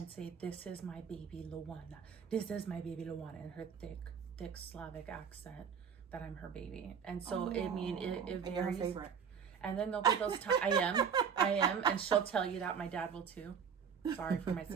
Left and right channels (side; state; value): left; quieter; 7.0 dB